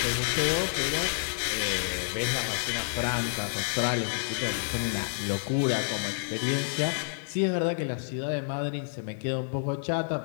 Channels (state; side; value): silent; right; 59 dB below the other